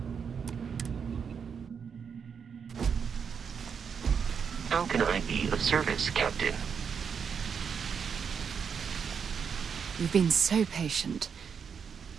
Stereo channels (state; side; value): quieter; left; 6.7 dB